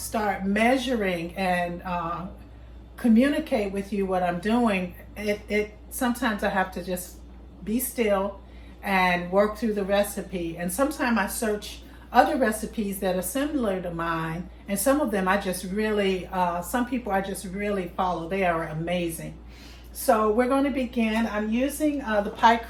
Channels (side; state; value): both; identical; correlation 1.00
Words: measuring and communicate with you what I'm doing, it sometimes I have to just be still and work through the recipe. And sometimes I search other recipes that are similar to mine, and some of them I just really, some people I just really follow. They are amazing. So we're going to begin. I'm using the pie